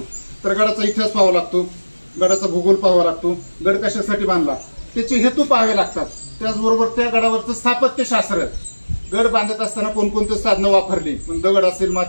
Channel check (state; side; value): inverted; both; correlation -1.00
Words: तर गडाचा इतिहास पाहावा लागतो, गडाचा भूगोल पाहावा लागतो, गड कशासाठी बांधला त्याचे हेतू पाहावे लागतात. त्याचबरोबर त्या गडावरचं स्थापत्यशास्त्र, गड बांधत असताना कोणकोणते साधनं वापरली, दगड असेल,